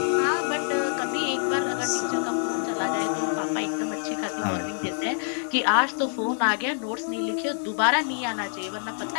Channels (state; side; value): silent; right; digital silence